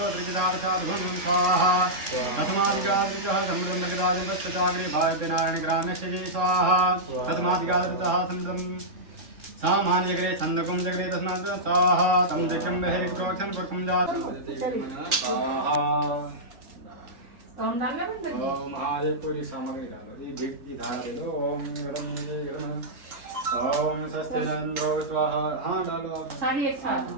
त्रिजिदावशाद्भुनं स्वाहा तस्मादिगादृतः समृद्धराजपश्चाग्रे भाव्यनारायणग्राम्यक्षजे स्वाहा तस्मादिगादृतः समृद्धं सामान्यग्रे छन्दकुं जग्रे तस्मात् स्वाहा तं जग्रं बहिर्क्रोक्षं पुरकुं जात स्वाहा ओम डालना बंद कर ओम महादेव पूरी सामग्री डालो ये भीख की धारा दे दो ओम गरम ओम स्वस्तिनंदो स्वाहा हाँ डालो आप सारी एक साथ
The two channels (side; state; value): left; late; 3.6 ms